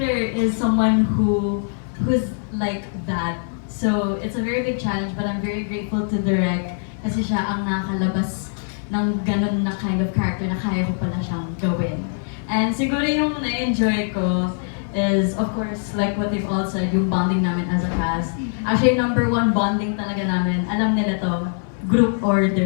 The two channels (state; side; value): silent; right; 58 dB below the other